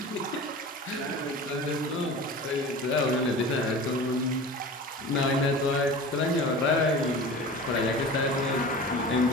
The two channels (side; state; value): both; normal; correlation 0.36